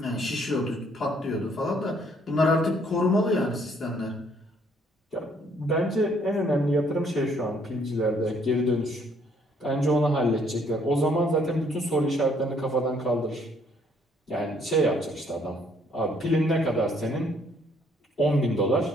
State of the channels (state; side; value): normal; both; correlation 0.65